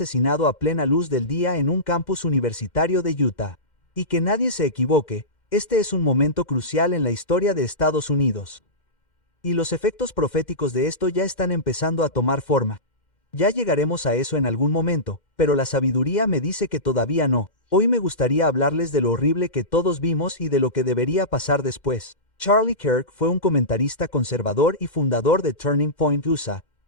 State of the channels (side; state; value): right; late; 2.1 ms